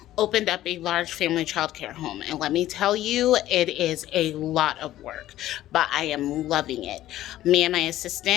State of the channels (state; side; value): quieter; right; 14.0 dB